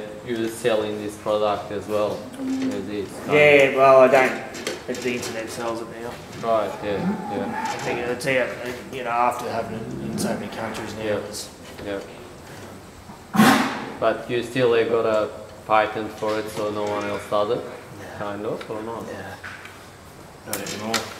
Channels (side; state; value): both; identical; correlation 1.00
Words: you're selling this product as well. Yeah, well, I don't. The internet sells it now. Right. Yeah. Yeah. I think it's out, after having it in so many countries now. Yeah. But you still got a patent for it, so no one else does it. Kind of, or not? Yeah. Not anymore.